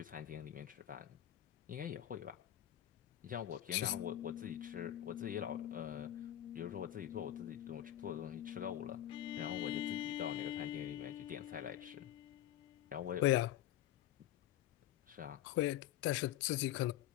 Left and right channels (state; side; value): quieter; right; 12.4 dB